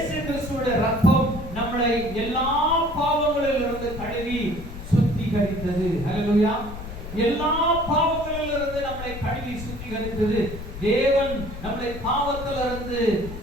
கிறிஸ்துவுடைய ரத்தம் நம்மளை எல்லா பாவங்களிலிருந்து கழுவி சுத்திகரித்தது. ஹல்லேலூயா. எல்லா பாவங்களிலிருந்து நம்மளை கழுவி சுத்திகரித்தது. தேவன் நம்மளை பாவத்திலிருந்து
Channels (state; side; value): noise; left; rumble, 10 dB below the sound